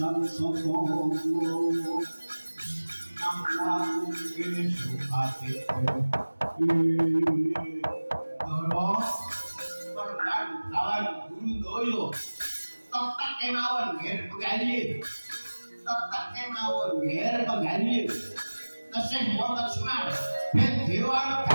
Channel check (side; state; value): both; inverted; correlation -1.00